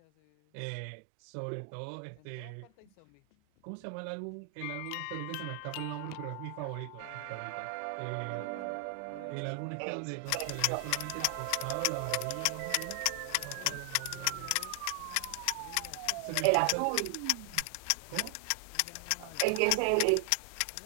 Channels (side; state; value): both; different; correlation 0.00